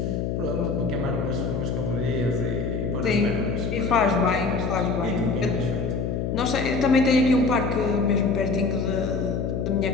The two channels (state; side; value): noise; left; hum, 1 dB below the sound